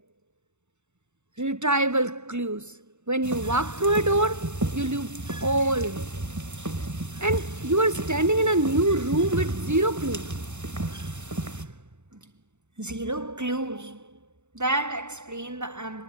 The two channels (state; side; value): late; left; 0.83 ms